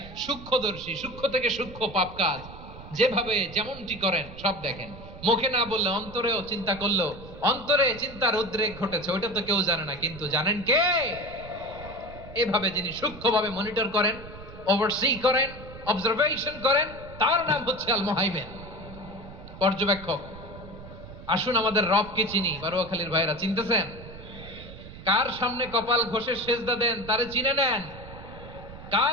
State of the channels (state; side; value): noise; right; rumble, 15 dB below the sound